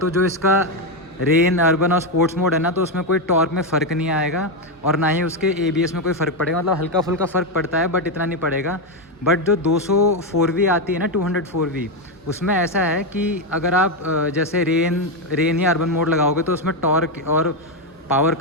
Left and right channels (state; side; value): normal; both; correlation 0.06